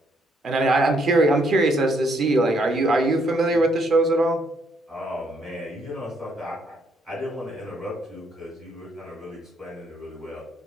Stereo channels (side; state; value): both; normal; correlation 0.71